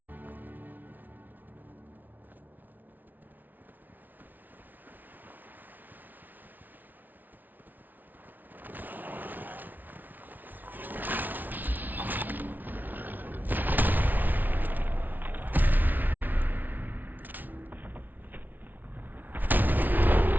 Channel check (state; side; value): late; left; 0.083 ms